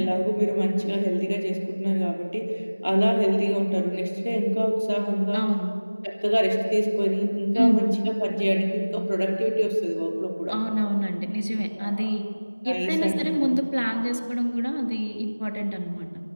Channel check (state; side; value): inverted; both; correlation -1.00